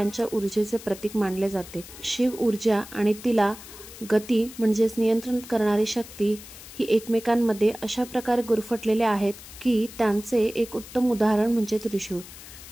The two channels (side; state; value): left; noise; hiss, 16 dB below the sound